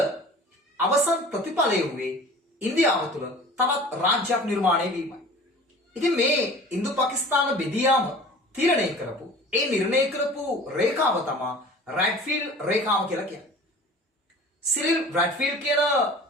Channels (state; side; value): normal; both; correlation 0.43